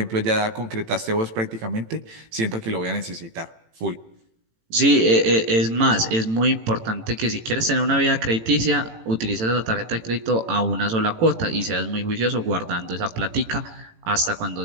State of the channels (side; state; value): left; late; 18 ms